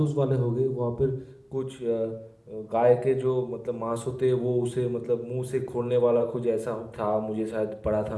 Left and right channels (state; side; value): identical; both; correlation 1.00